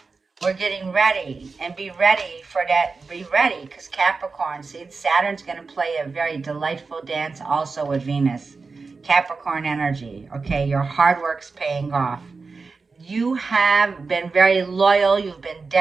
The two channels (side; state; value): left; quieter; 4.3 dB